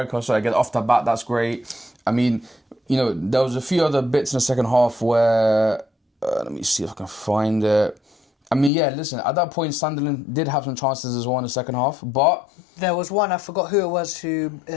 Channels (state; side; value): drops out; right; at 8.7 s